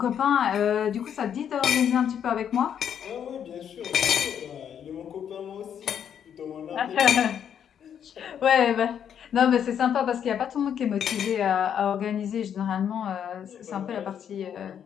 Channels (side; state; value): right; quieter; 8.7 dB